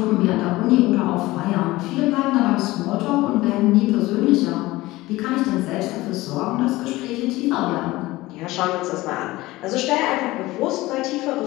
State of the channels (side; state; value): right; quieter; 18.9 dB